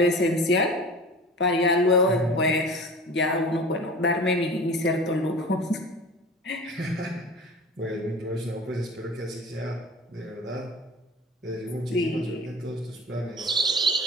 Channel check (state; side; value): normal; both; correlation 0.37